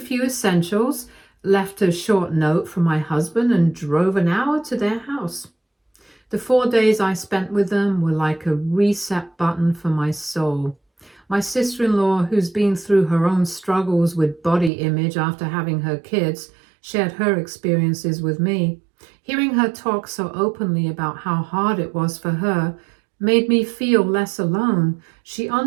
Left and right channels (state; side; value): drops out; left; at 14.7 s